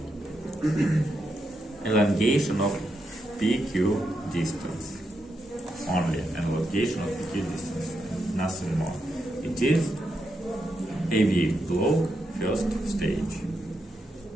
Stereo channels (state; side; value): normal; both; correlation 0.83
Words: elongation of PQ distance. Only elongation of PQ distance, nothing more. It is AV block first stage.